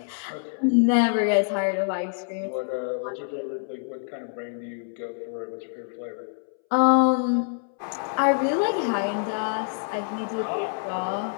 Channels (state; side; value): silent; right; 61 dB below the other